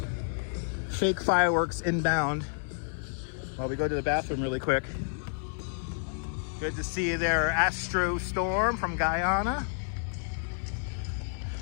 fireworks inbound while we go to the bathroom really quick. Good to see you there, Astro Storm from Guyana.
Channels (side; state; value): right; silent; digital silence